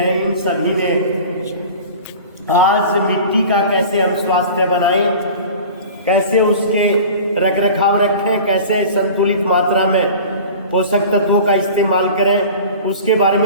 इन सभी ने आज मिट्टी का कैसे हम स्वास्थ्य बनाएं, कैसे उसके रख रखाव रखें, कैसे संतुलित मात्रा में पोषक तत्वों का इस्तेमाल करें, उसके बारे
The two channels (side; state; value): both; inverted; correlation -0.39